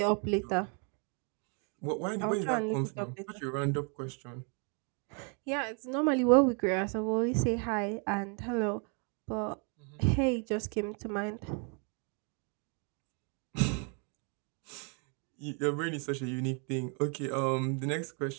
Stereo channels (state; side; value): quieter; left; 38.3 dB